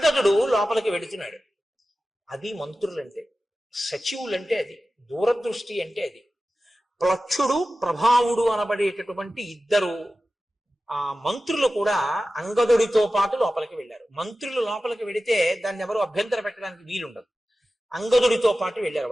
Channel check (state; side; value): normal; both; correlation 0.95